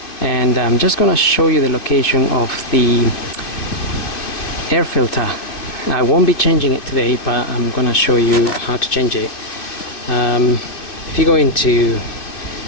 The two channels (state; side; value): late; right; 2.5 ms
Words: and I'm just gonna show you the location of the air filter. I won't be changing it today, but I'm gonna show you how to change it. If you go into